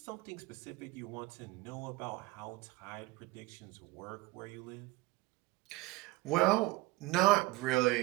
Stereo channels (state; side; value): quieter; left; 20.2 dB